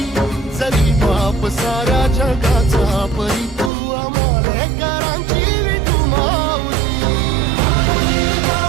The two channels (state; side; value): drops out; left; at 3.7 s